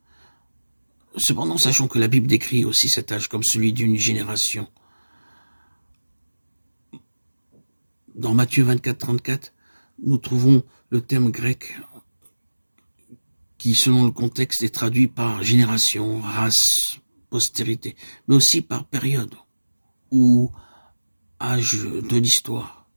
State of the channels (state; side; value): inverted; both; correlation -1.00